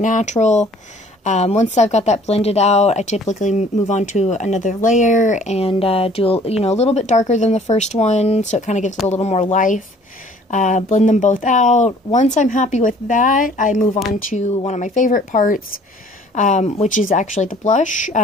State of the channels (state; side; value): normal; both; correlation 0.54